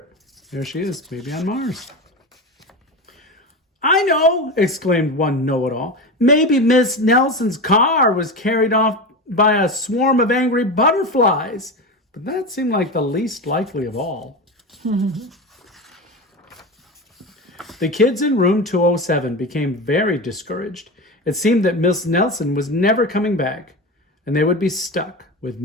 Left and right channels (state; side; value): normal; both; correlation 0.23